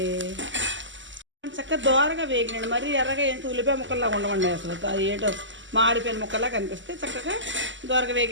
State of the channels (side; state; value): left; late; 0.54 ms